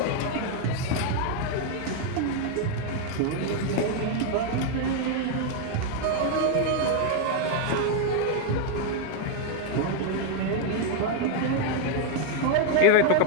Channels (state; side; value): different; both; correlation 0.01